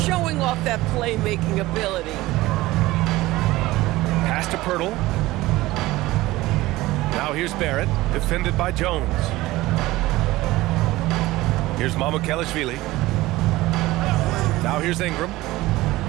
off that playmaking ability. Pass to Pirtle. Now here's Barrett, defended by Jones. Here's Mamukelashvili. Now here's Ingram.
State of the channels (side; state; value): left; quieter; 18.3 dB